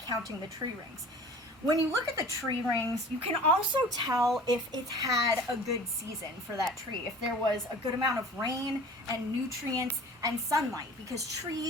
the tree rings. When you look at the tree rings, you can also tell if it's had a good season for that tree, if there was a good amount of rain and nutrients and sunlight, because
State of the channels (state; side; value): normal; both; correlation 0.44